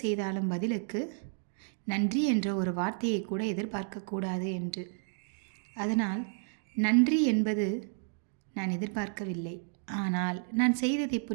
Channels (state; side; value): silent; left; 57 dB below the other